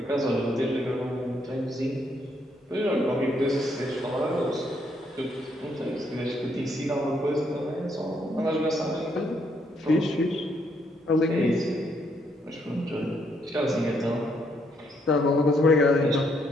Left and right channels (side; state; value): both; normal; correlation 0.73